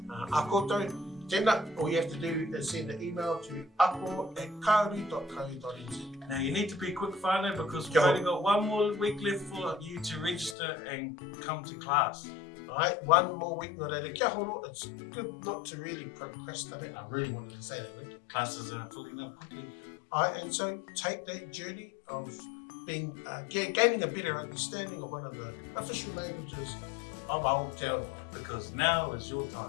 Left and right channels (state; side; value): drops out; right; at 10.6 s